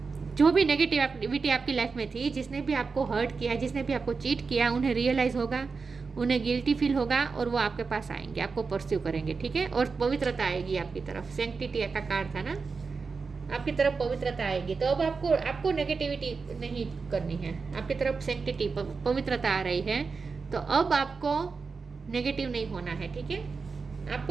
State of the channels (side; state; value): left; quieter; 4.8 dB